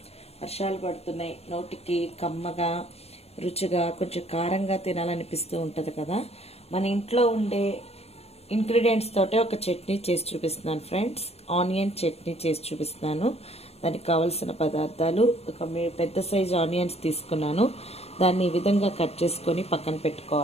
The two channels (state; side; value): late; right; 0.30 ms